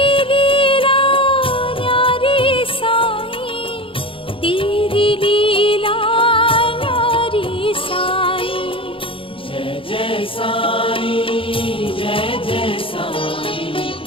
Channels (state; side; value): late; right; 0.26 ms